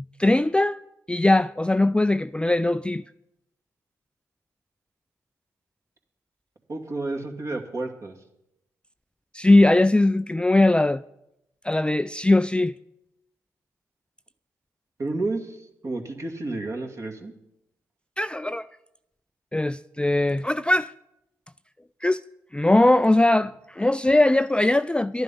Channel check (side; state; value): both; normal; correlation 0.97